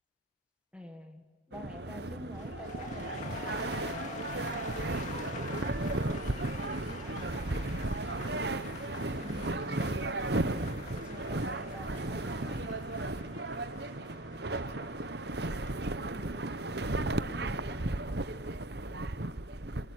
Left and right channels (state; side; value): normal; both; correlation 0.36